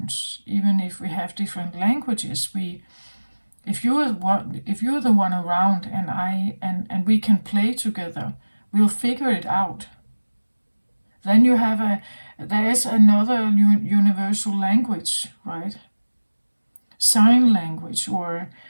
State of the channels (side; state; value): both; inverted; correlation -1.00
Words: even if we have different languages, if you're the one around and we can play together, we'll figure it out. Then there's another universal language, right? Sign language, or